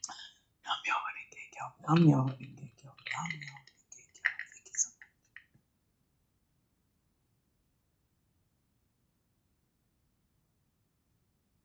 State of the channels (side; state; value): both; identical; correlation 1.00